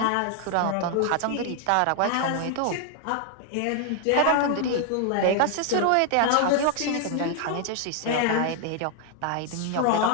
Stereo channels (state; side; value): different; both; correlation 0.00